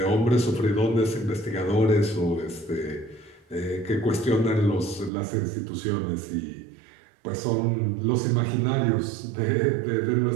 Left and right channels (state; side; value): drops out; left; at 5.1 s